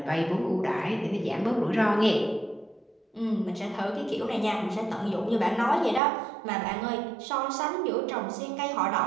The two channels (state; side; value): drops out; left; at 6.0 s